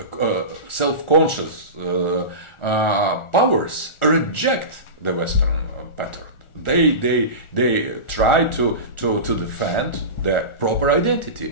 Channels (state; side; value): late; right; 1.4 ms